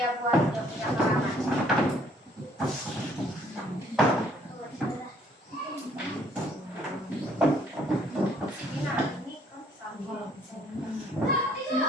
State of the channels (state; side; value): normal; both; correlation 0.62